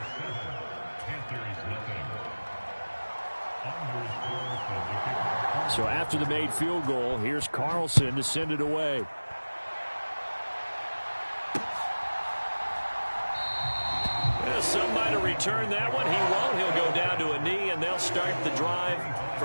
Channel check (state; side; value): inverted; both; correlation -1.00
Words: So after the made field goal, here's Carlson to send it away. Some might have returned that one. He won't. He'll go down to a knee, and they'll start the drive